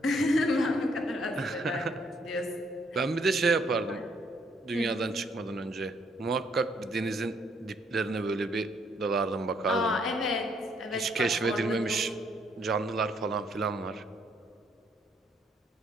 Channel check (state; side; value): normal; both; correlation 0.69